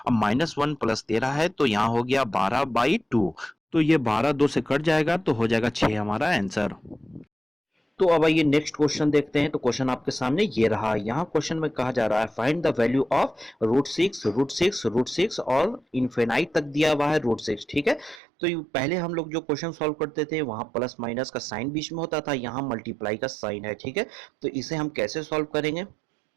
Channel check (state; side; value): drops out; left; at 18.2 s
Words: अब -1 प्लस 13 है तो यहाँ हो गया 12/2, तो ये 12 2 से कट जाएगा तो हो जाएगा 6 हमारा आंसर। तो अब आइए नेक्स्ट क्वेश्चन देखते हैं। तो क्वेश्चन आपके सामने ये रहा। यहाँ क्वेश्चन में कहा जा रहा है फाइंड द वैल्यू ऑफ √6 और इनफिनाइट तक दिया हुआ है √6, ठीक है। तो पहले हम लोग जो क्वेश्चन सॉल्व करते थे वहां प्लस माइनस का साइन बीच में होता था, यहाँ मल्टीप्लाई का साइन है, ठीक है। तो इसे हम कैसे सॉल्व करेंगे?